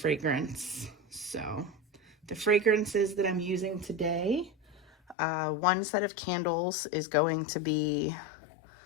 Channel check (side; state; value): right; drops out; at 5.2 s